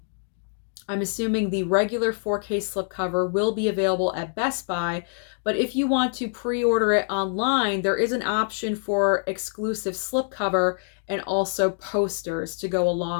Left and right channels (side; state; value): right; silent; digital silence